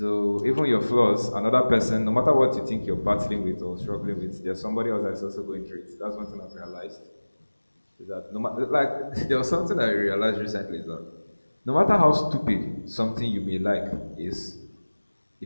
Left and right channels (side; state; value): both; inverted; correlation -1.00